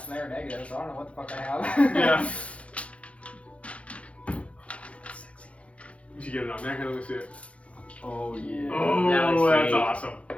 and they were negative, so I don't know what the fuck I have. Yeah. Did you get it on there? Let me see it. Oh yeah. Oh, that's sweet. awesome.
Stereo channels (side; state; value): right; late; 0.063 ms